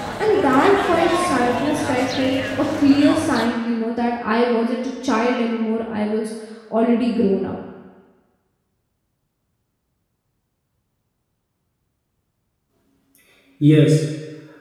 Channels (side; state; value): both; identical; correlation 1.00